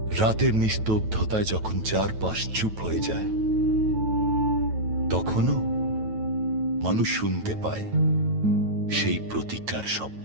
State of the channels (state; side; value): late; left; 9.2 ms